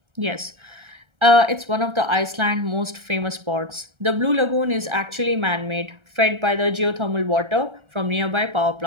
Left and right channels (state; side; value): late; left; 1.3 ms